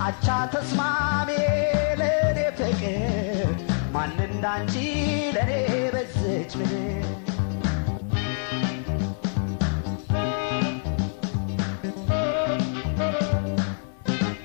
አቻ ተስማሚ ለኔ ፍቅር ማን እንዳንቺ ለኔ በዘች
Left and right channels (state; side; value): silent; right; 61 dB below the other